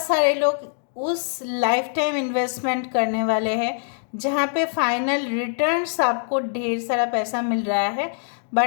सारे लोग उस लाइफ टाइम इन्वेस्टमेंट करने वाले हैं जहाँ पे फाइनल रिटर्न्स आपको ढेर सारा पैसा मिल रहा है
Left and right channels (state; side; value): silent; right; digital silence